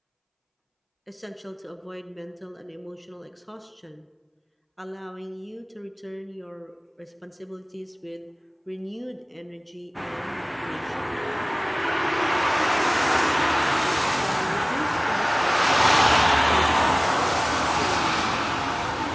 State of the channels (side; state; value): both; identical; correlation 1.00